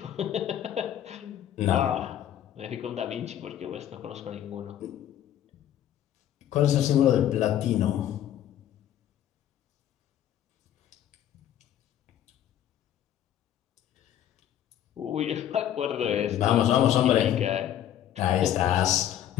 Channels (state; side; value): quieter; right; 11.1 dB